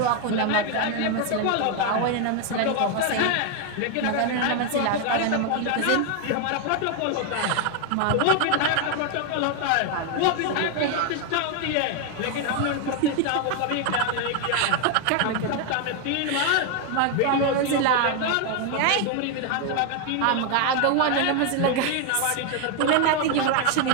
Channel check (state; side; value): different; both; correlation 0.01